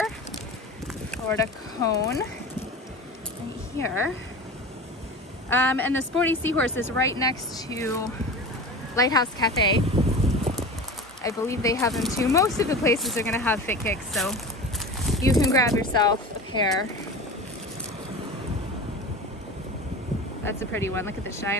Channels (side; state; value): both; normal; correlation 0.32